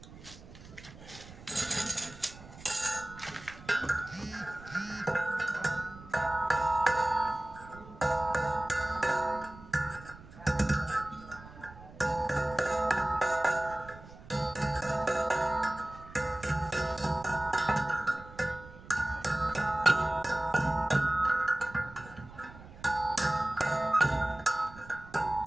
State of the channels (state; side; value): noise; right; rumble, 18 dB below the sound